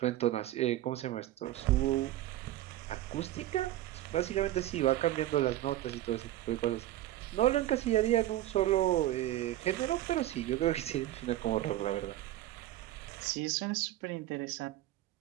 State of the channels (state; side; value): quieter; left; 14.5 dB